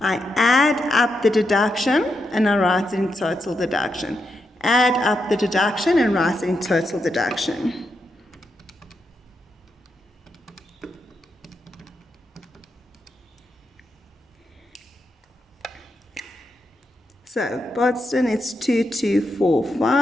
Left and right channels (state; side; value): normal; both; correlation 0.84